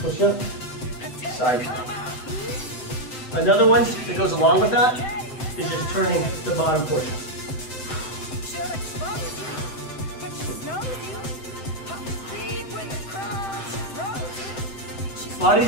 up, side plank. Another one that goes along with that is just turning the bottom portion. lot of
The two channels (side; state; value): right; late; 7.7 ms